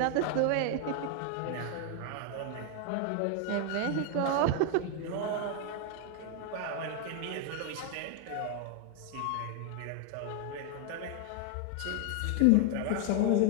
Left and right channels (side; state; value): both; different; correlation 0.00